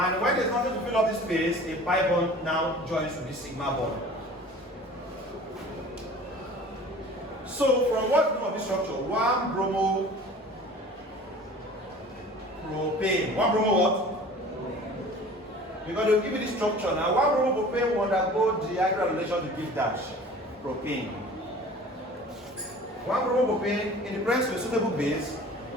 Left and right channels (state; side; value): normal; both; correlation 0.44